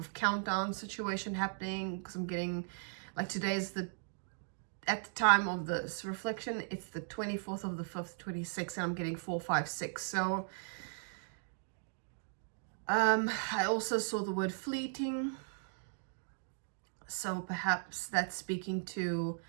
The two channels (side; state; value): left; silent; digital silence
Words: countdown situation happening, because I'm getting, like, today's at the time of this reflection, it's the 24th of the 5th, 26, and I'm getting 4, 5, 6. So I also saw the word fleeting. So perhaps that's speaking to